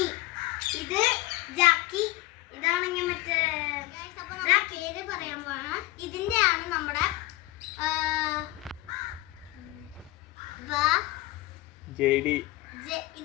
ഇത് ജാക്കി, ഇതാണെങ്കിൽ മറ്റേ പേര് പറയാൻ പോണ. ഇതിന്റെ ആണ് നമ്മുടെ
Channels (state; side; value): quieter; right; 18.7 dB